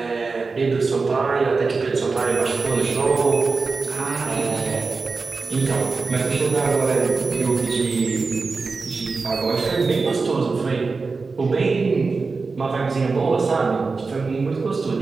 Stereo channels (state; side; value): quieter; left; 4.3 dB